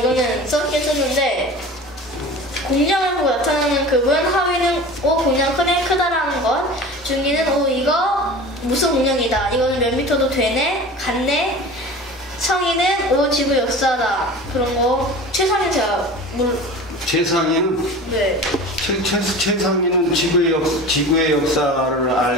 썼긴 썼는데 공룡을 보고 나타나는 급은 하위는 공룡 크다라는 것, 중위는 이거 무슨 공룡이다, 이거는 몇 미터도 되네, 같네, 성인은 지구 역사다, 그런 거. 최상위 제가 최상위는 네. 최상위는 지구의 역사를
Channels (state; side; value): normal; both; correlation 0.37